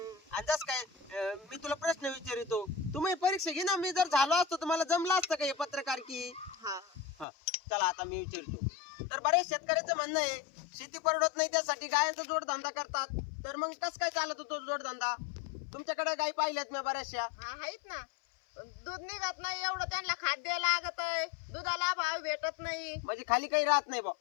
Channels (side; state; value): right; drops out; at 7.2 s